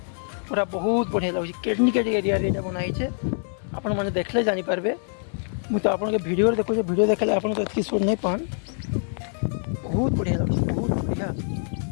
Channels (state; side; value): silent; right; digital silence